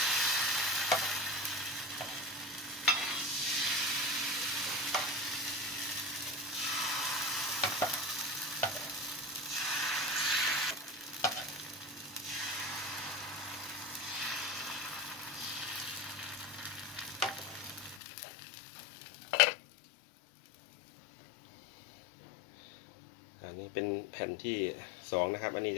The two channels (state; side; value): drops out; right; at 18.0 s